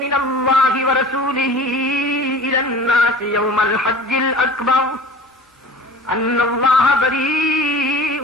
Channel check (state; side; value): normal; both; correlation 0.41